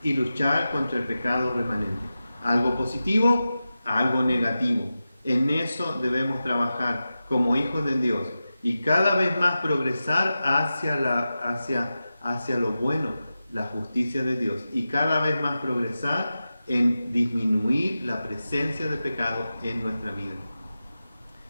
y luchar contra el pecado remanente. Algo positivo, algo negativo. En eso debemos trabajar como hijos de Dios y cada vez más progresar hacia lo bueno, la justicia de Dios, y cada vez más progresar en disminuir la presencia de pecado en nuestra vida.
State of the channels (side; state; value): both; inverted; correlation -0.93